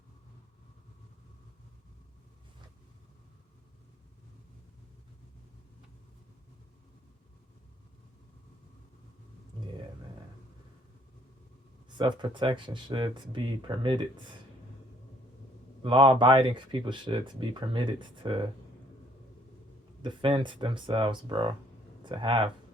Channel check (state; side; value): normal; both; correlation 0.62